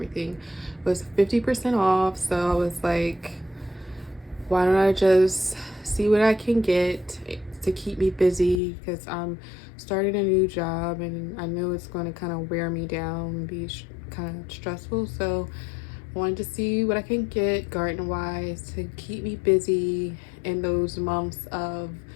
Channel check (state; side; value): drops out; right; at 8.6 s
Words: was 50% off. So I was like, why don't I just see what I can get to keep me busy, because I'm starting a new job and I know it's going to kind of wear me down and be kind of stressful. So I wanted to see what I can get garden wise to keep me busy in those months of